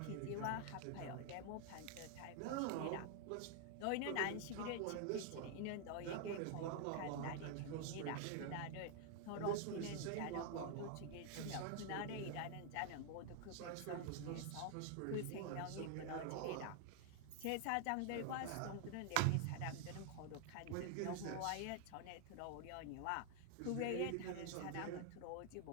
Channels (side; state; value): both; different; correlation 0.00